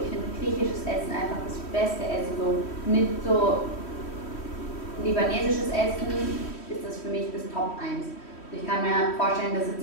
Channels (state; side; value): late; right; 3.1 ms